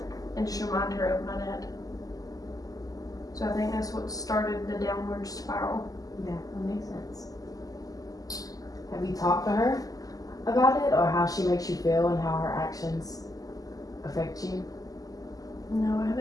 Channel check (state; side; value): late; right; 0.17 ms